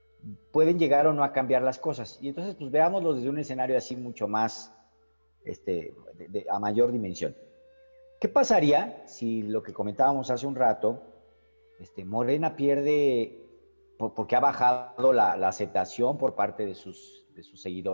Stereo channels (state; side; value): inverted; both; correlation -1.00